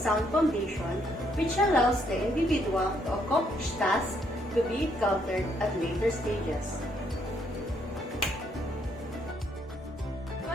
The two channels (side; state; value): both; normal; correlation 0.71